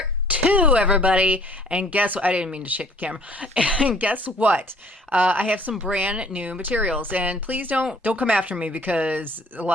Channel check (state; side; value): normal; both; correlation 0.56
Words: 2, everybody. And guess what? I didn't mean to shake the camera. And guess what? I have some brand new materials, and please don't come after me because a